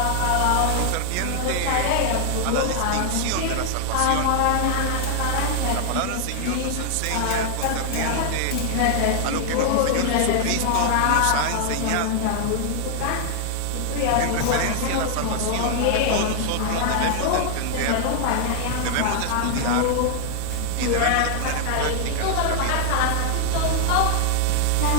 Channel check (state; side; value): different; both; correlation 0.00